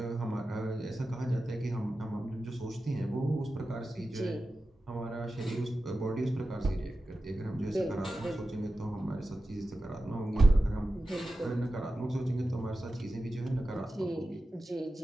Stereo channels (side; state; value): both; normal; correlation 0.93